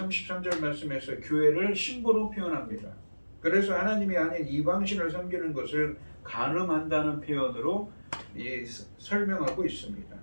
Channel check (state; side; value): inverted; both; correlation -1.00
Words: 말씀에서 교회를 신부로 표현합니다. 그래서 하나님이 아닌 이방신을 섬기는 것을 간음한다는 표현으로 설명하고 있습니다.